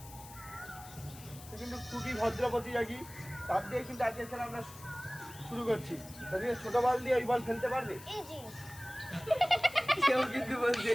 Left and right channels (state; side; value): noise; left; hiss, 17 dB below the sound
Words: সে কিন্তু খুবই ভদ্র প্রতিযোগী, তার দিয়ে কিন্তু আজকের খেলা আমরা শুরু করছি। ছোট বল দিয়ে ওই বল ফেলতে পারবে? সেও কিন্তু বলছে